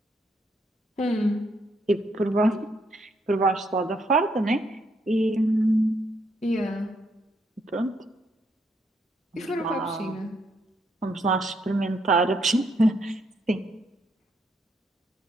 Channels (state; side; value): normal; both; correlation 0.74